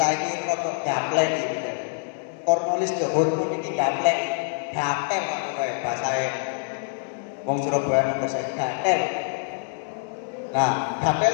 rodok gaplek iki. Cornelis de Houtman iki gaplek, gatel kok basae. Wong Surabaya bahasa gatel. Nah,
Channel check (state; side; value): silent; right; digital silence